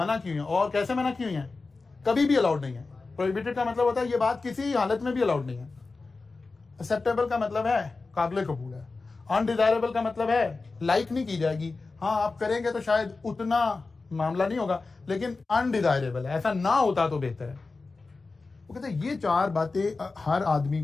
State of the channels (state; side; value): quieter; right; 3.8 dB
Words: की हुई है। और कैसे मना की हुई है? कभी भी अलाउड नहीं है। प्रोहिबिटेड का मतलब होता है ये बात किसी हालत में भी अलाउड नहीं है। एक्सेप्टेबल का मतलब है काबिल कबूल है। अनडिजायरेबल का मतलब है लाइक नहीं की जाएगी, हाँ आप करेंगे तो शायद उतना मामला नहीं होगा, लेकिन अनडिजायरेबल है, ऐसा ना होता तो बेहतर है। वो कहते हैं ये 4 बातें हर आदमी